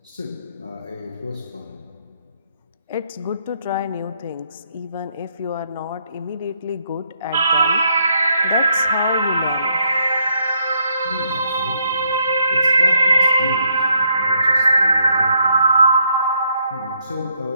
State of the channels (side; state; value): both; inverted; correlation -0.74